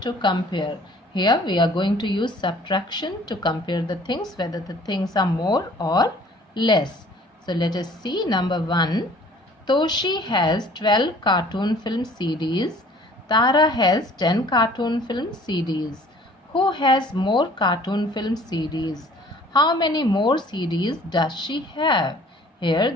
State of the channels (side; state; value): both; normal; correlation 0.53